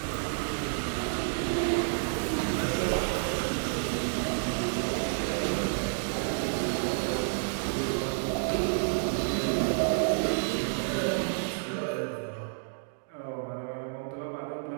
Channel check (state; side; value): silent; left; digital silence